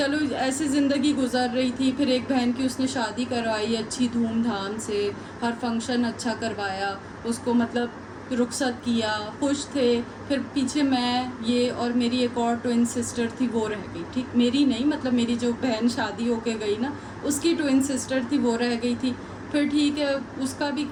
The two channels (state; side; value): identical; both; correlation 1.00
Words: ایسی زندگی گزر رہی تھی. پھر ایک بہن کی اس نے شادی کروائی اچھی دھوم دھام سے, ہر فنکشن اچھا کروایا, اس کو مطلب رخصت کیا, خوش تھے. پھر پیچھے میں, یہ اور میری ایک اور ٹوئن سسٹر تھی وہ رہ گئی. ٹھیک, میری نہیں, مطلب میری جو بہن شادی ہو کے گئی نا اس کی ٹوئن سسٹر تھی وہ رہ گئی تھی. پھر ٹھیک ہے, اس کا بھی